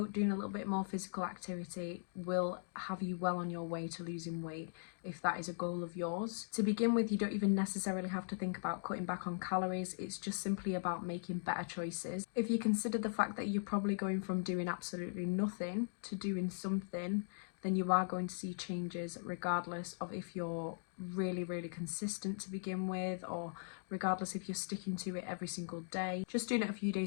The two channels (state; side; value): silent; right; digital silence